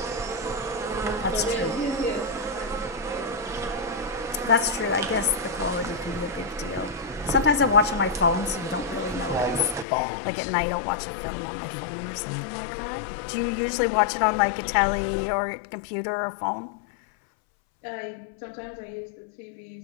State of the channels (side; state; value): right; drops out; at 9.9 s